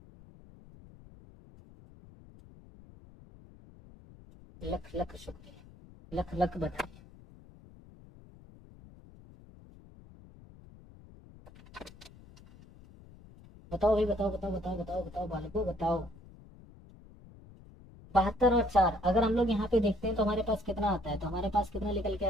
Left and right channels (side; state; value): left; noise; rumble, 21 dB below the sound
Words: लख लख शुक्रिया, लख लख बताइए। बताओ भाई बताओ बताओ बताओ बताओ बताओ बालको बताओ। 72 और 4 अगर हम लोग यहाँ पे देखते हैं तो हमारे पास कितना आता है, तो हमारे पास कितना निकल के